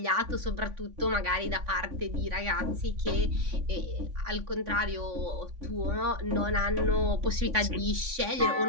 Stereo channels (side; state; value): left; late; 3.5 ms